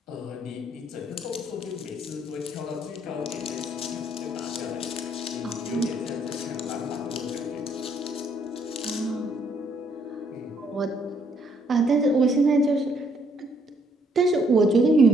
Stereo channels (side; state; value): both; normal; correlation 0.68